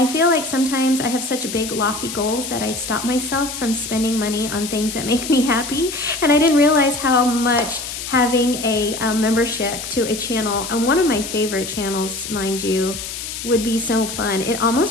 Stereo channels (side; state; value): left; noise; hiss, 7 dB below the sound